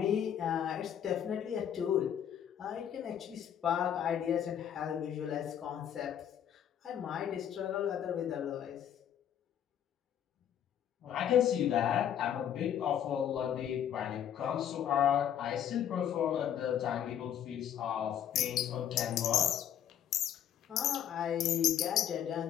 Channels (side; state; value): right; quieter; 9.7 dB